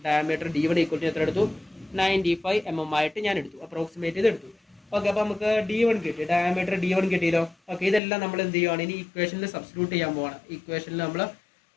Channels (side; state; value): right; drops out; at 8.0 s